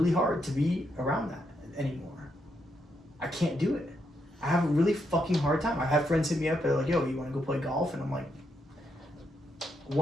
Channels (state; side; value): normal; both; correlation 0.79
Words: hard to be around that anymore. I can't do it. I have a really fucking hard time. I've had friends hit me up, they're like, yo, you want to go play golf? And I'm like,